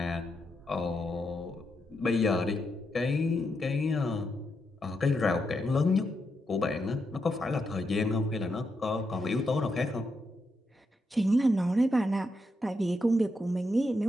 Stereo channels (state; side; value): normal; both; correlation 0.83